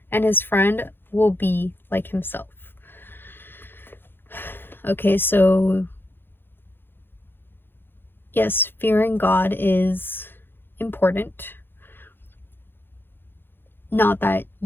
and his friend will be like himself. Okay, so yes, fearing God is important. Not that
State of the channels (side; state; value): right; late; 0.10 ms